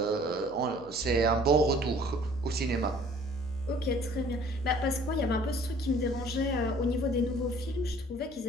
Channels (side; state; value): left; noise; hum, 23 dB below the sound